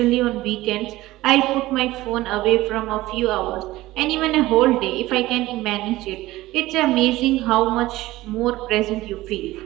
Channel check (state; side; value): quieter; left; 17.5 dB